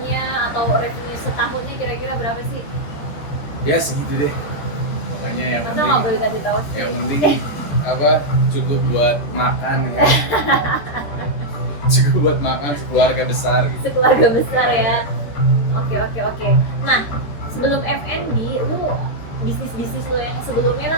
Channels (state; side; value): late; right; 13 ms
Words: atau revenue setahunnya kira-kira berapa sih? Ya segitu deh. Pokoknya yang Masa nggak boleh penting, kasih tahu sih? yang penting cukup buat makan ya. Cukup buat makan sekeluarga besar gitu. Sekeluarga besar ya. Oke. Nah, sebelum F&B, lu bisnis lo yang sebelumnya